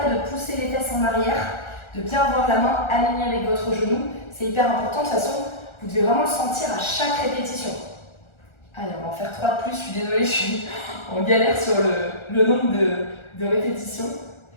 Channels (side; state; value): right; late; 1.4 ms